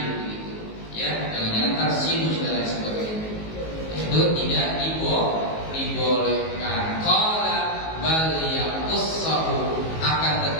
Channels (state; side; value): late; right; 19 ms